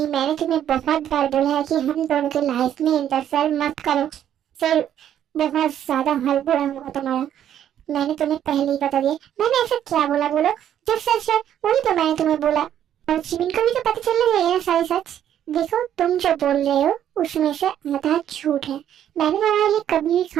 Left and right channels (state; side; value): quieter; left; 10.4 dB